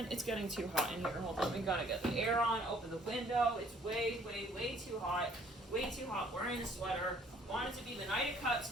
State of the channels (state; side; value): normal; both; correlation 0.60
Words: It's getting too hot in here. Hold on, we gotta get the air on, open the window. It's way, way, way too hot. Way too hot. Wearing a sweater. Want it to be the Knight of Cups,